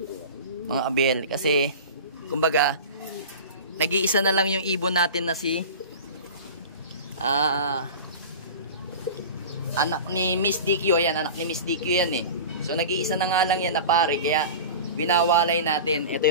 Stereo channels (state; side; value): inverted; both; correlation -0.34